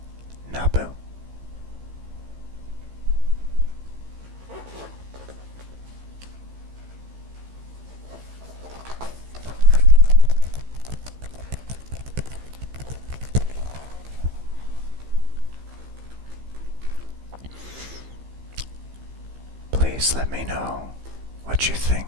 Naboo. Please let me know what you think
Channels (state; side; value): late; left; 15 ms